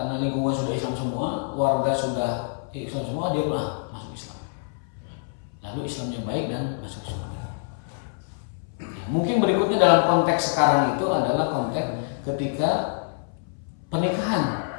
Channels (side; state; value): right; silent; 61 dB below the other